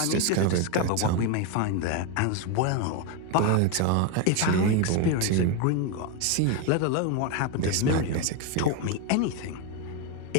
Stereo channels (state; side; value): different; both; correlation 0.02